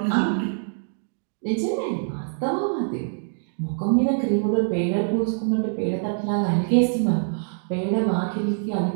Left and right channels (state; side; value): silent; left; digital silence